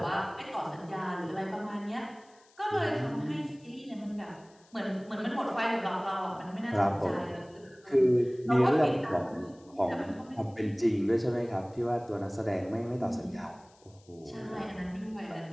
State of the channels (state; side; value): noise; left; hiss, 30 dB below the sound